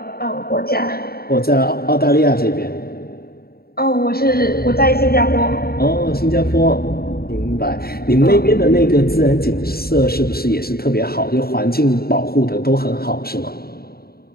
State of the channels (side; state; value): right; late; 0.45 ms